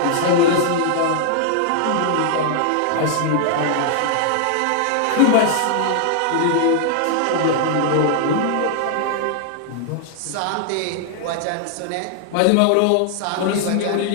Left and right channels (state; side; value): different; both; correlation 0.00